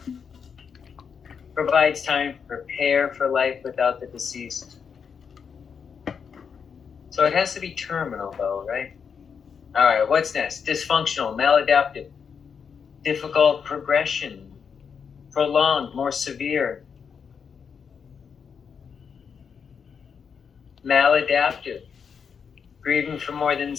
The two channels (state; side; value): quieter; right; 6.6 dB